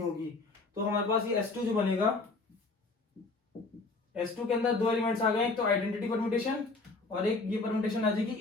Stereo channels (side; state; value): right; quieter; 3.6 dB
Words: होगी। तो हमारे पास ये S2 जो बनेगा, S2 के अंदर दो एलिमेंट्स आ गए, एक तो आइडेंटिटी परम्यूटेशन और एक ये परम्यूटेशन आ जाएगी